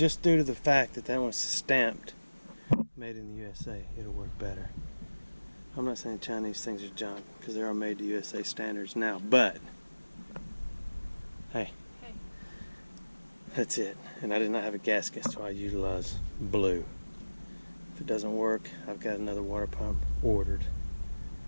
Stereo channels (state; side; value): inverted; both; correlation -1.00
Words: due to the fact that that one's stamped made in the USA, it'll work better. I'm not saying Chinese things are junk, because they are made to USA standards now, but hey, that's it. And I did not have a gasket, so I utilized blue. If it doesn't work, I've got another water pump ordered.